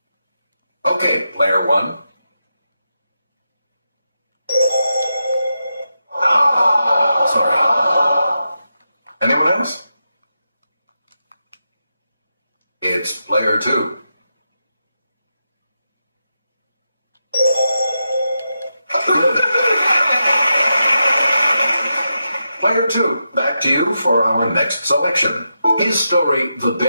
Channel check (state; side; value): inverted; both; correlation -0.87